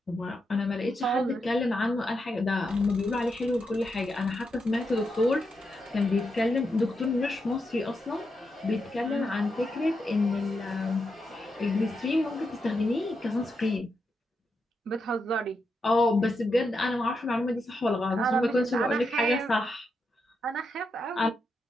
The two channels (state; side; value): normal; both; correlation 0.84